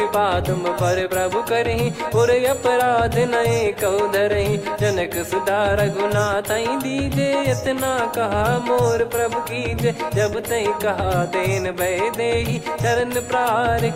तुम पर प्रभु करहि, पुर अपराध नए कौ धरहि। जनक सुधा रघुनाथ दीजे, इतना कहा मोर प्रभु कीजे। जब तई कहा देन भय देहि, चरण प्रार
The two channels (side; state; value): both; identical; correlation 1.00